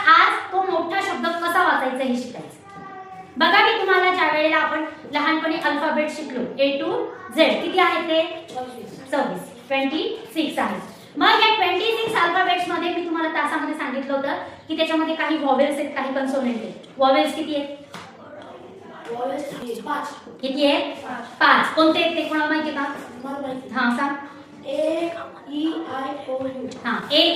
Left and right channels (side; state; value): both; identical; correlation 1.00